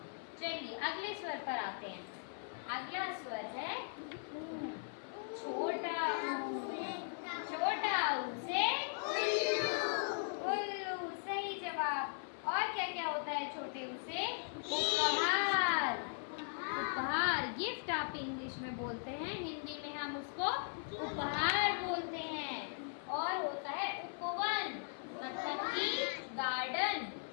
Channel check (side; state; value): right; silent; 52 dB below the other